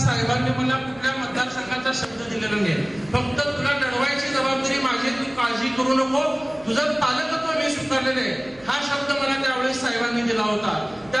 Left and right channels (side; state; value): right; noise; hum, 25 dB below the sound